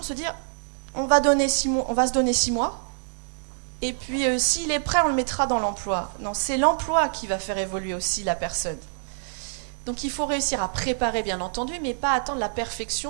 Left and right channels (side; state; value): left; silent; digital silence